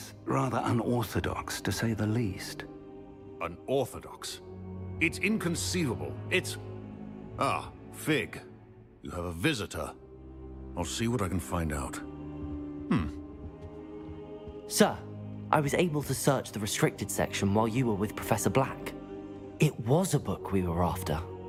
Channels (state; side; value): identical; both; correlation 1.00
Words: rather unorthodox, to say the least. Unorthodox? It's inconceivable. It's... Ah, Fig. You have a visitor. I'll see what I can find out. Sir, I was able to search the restricted section while you were with Professor Black. It was a book we were after.